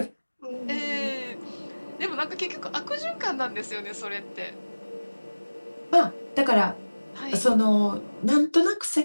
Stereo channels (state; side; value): inverted; both; correlation -1.00